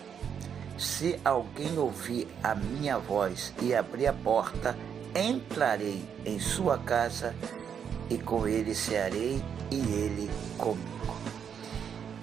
Se alguém ouvir a minha voz e abrir a porta, entrarei em sua casa e com ele cearei e ele comigo.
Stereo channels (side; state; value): left; quieter; 7.8 dB